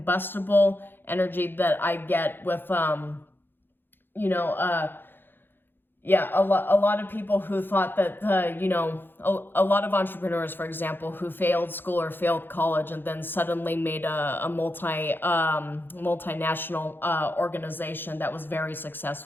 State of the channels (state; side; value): late; right; 0.099 ms